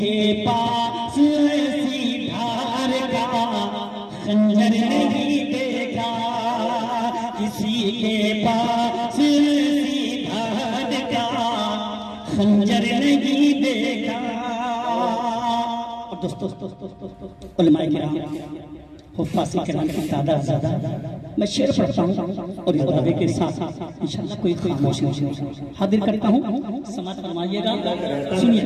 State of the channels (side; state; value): both; identical; correlation 1.00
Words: पास ऐसी धार का खंजर नहीं देखा। किसी के पास ऐसी धार का खंजर नहीं देखा। और दोस्तों उलमाए किराम हुफ्फाज़ किराम की तादाद ज़्यादा। मैं शेर पढ़ता हूँ और इस दावे के साथ इंशाअल्लाह कोई खामोशी हाजिर करता हूँ, समाअत फरमाइएगा। सुनिए।